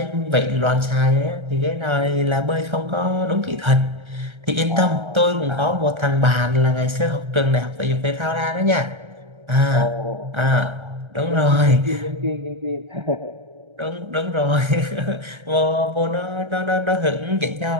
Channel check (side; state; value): left; late; 1.3 ms